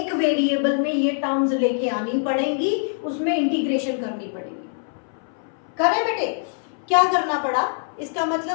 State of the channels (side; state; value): right; silent; 60 dB below the other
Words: वेरिएबल में ये टर्म्स लेके आनी पड़ेंगी, उसमें इंटीग्रेशन करनी पड़ेगी। करें बेटे, क्या करना पड़ा, इसका